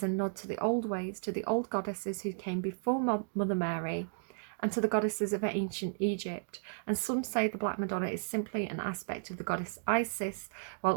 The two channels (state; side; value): silent; left; digital silence